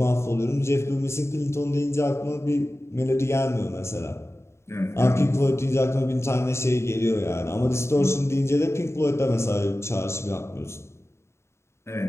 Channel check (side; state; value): right; late; 0.13 ms